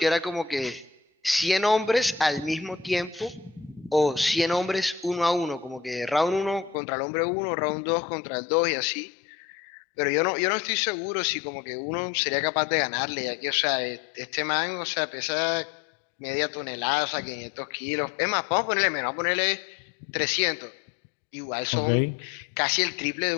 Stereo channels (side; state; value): right; drops out; at 6.8 s